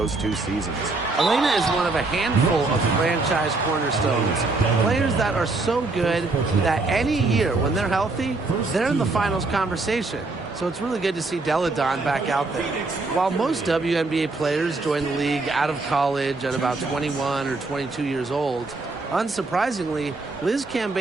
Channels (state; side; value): quieter; left; 3.5 dB